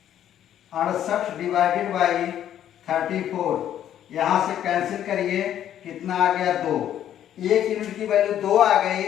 68 डिवाइडेड बाई 34, यहां से कैंसिल करिए, कितना आ गया 2। 1 यूनिट की वैल्यू 2 आ गई,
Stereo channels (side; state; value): right; quieter; 10.8 dB